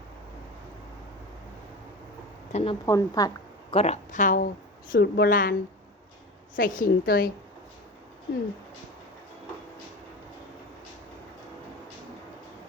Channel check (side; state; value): both; normal; correlation 0.30